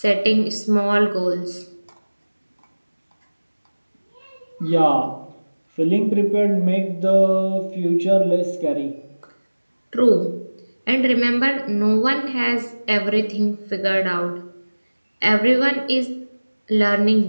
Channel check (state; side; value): inverted; both; correlation -1.00